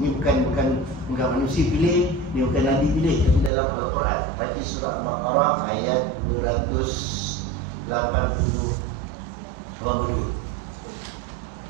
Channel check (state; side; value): drops out; left; at 3.5 s